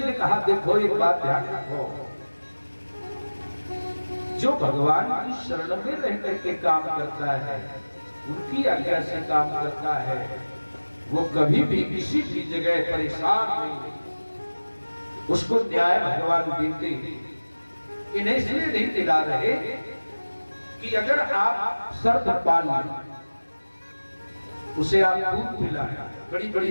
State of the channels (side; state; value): both; inverted; correlation -1.00